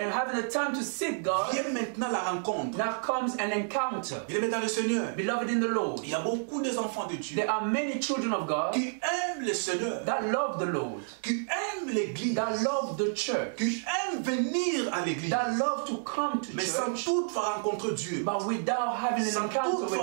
having the time to seek God, vient maintenant la rencontre. now comes an encounter. Il est dans le Seigneur. Beloved in the Lord, Il y a beaucoup des enfants de Dieu there are many children of God qui aiment le Seigneur, that love the Lord, qui aiment l'église, that love the church, qui aiment venir à l'église, that love to come to mais sans church, toutefois rencontrer Dieu, but without having an sans encounter with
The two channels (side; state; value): left; silent; digital silence